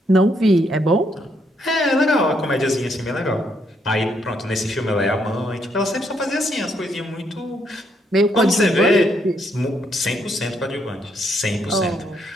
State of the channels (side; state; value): both; normal; correlation 0.74